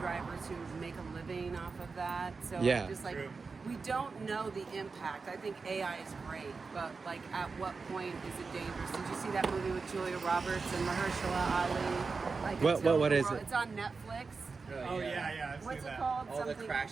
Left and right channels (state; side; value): quieter; left; 4.5 dB